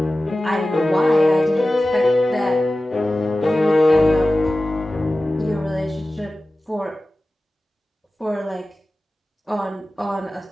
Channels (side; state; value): both; normal; correlation 0.95